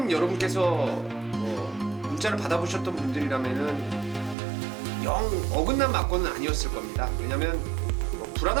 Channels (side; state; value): left; drops out; at 4.4 s